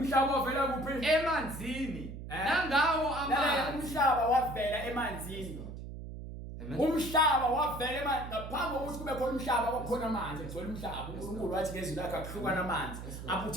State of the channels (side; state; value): right; noise; hum, 10 dB below the sound